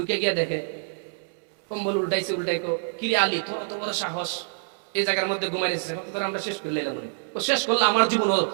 গিয়া দেখে কম্বল উল্টাইছে, উল্টাইকো, কিরে আলী, তোর তো বড় সাহস, এই জায়গার মধ্যে ঘুমাই রেখেছে, তোর আমরা শেষ করে লাইলাম। ও শেষ করলে আমার জীবন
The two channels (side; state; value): left; silent; 61 dB below the other